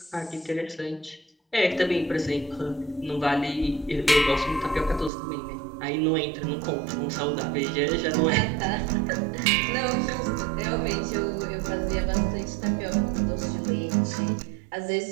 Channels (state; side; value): drops out; left; at 5.1 s